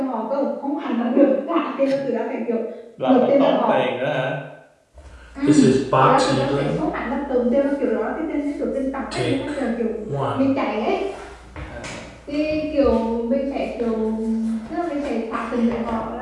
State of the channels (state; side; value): identical; both; correlation 1.00